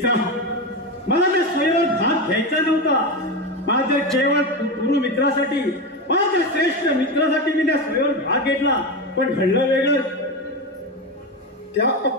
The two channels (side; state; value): both; normal; correlation 0.17